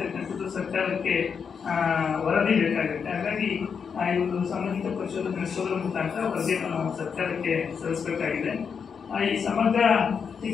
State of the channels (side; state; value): right; quieter; 6.4 dB